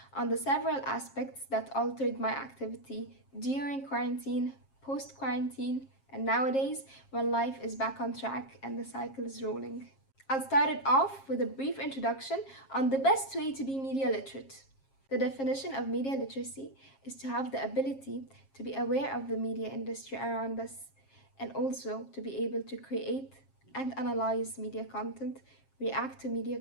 on the several aspects that altered my activity during quarantine, post-quarantine, and nowadays when life is back on track and the cycle is rolling. I'll start it off with a brief introduction on the best way to be media literate. The definition of media literacy is to have the ability to be aware of the media industry around us and also to be able to create and analyze media content, react to media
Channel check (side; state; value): right; late; 7.4 ms